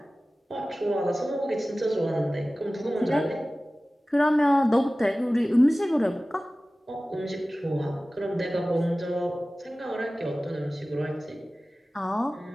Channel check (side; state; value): both; normal; correlation 0.97